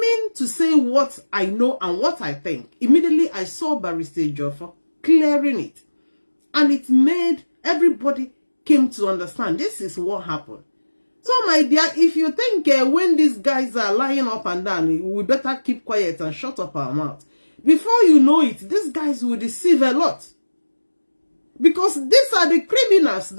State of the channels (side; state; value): both; inverted; correlation -1.00